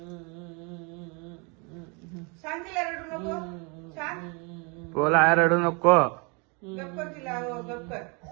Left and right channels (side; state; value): left; quieter; 32.1 dB